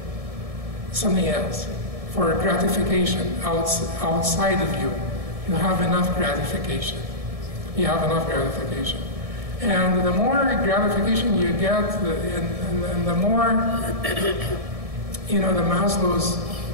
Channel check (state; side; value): late; left; 1.7 ms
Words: something else, for gratification outside of you. You have enough gratification. You have enough gratification. And the more gratification you get, and the more, the Maslow's